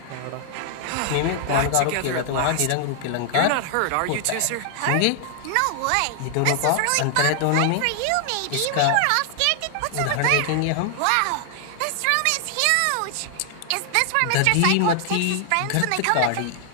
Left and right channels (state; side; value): different; both; correlation 0.00